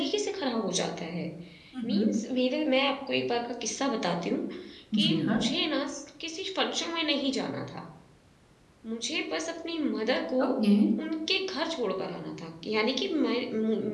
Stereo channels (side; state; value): both; identical; correlation 1.00